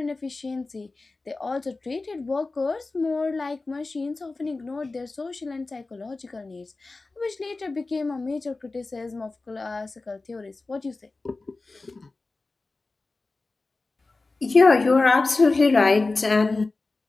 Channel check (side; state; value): right; quieter; 3.5 dB